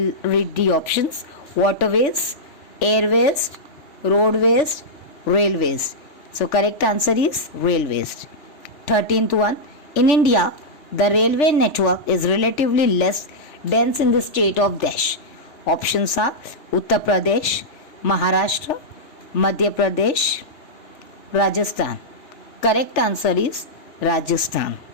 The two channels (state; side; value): late; right; 3.4 ms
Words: read the options. Waterways, airways, roadways, railways. So correct answer is railways. 13th one. In India, the railway network is relatively less dense in the state of dash. Options are Uttar Pradesh, Maharashtra, Madhya Pradesh, Rajasthan. Correct answer is Rajasthan.